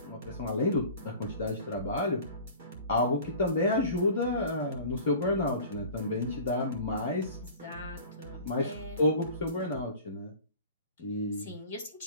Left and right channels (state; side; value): inverted; both; correlation -0.41